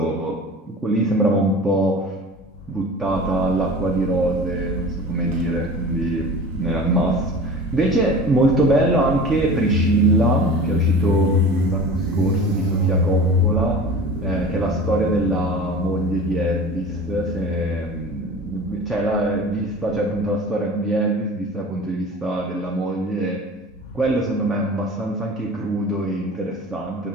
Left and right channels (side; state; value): both; normal; correlation 0.38